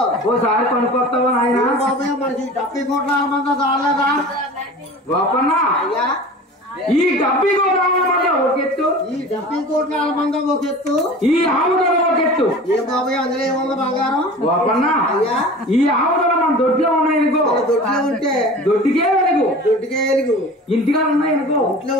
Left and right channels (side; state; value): both; normal; correlation 0.38